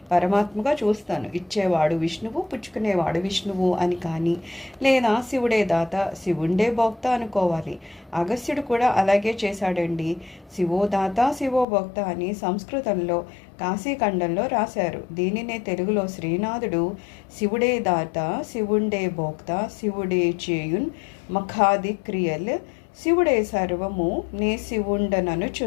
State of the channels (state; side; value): drops out; right; at 11.7 s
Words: పరమాత్మగా చూస్తాను. ఇచ్చేవాడు విష్ణువు, పుచ్చుకునేవాడు విష్ణువు అని కానీ, లేదా శివుడే దాత, శివుండే భోక్త అనుకోవాలి. అగస్త్యుడు కూడా అలాగే చేశాడండి. శివో దాత శివో భోక్త అని సంస్కృతంలో కాశీఖండంలో రాశారు. దీనినే తెలుగులో శ్రీనాథుడు శివుడే దాత శివుండే భోక్త శివుడే చేయున్ మఖాది క్రియల్ శివుడే సర్వము నే